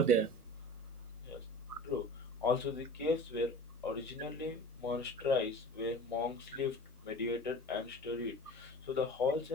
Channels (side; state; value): both; normal; correlation 0.37